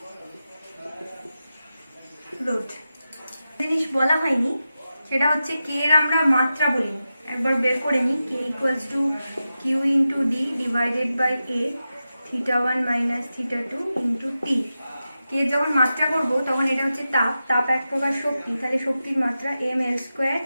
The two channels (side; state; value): both; inverted; correlation -0.91